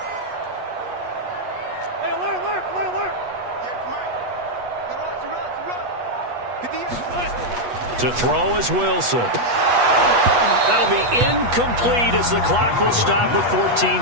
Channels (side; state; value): left; late; 8.3 ms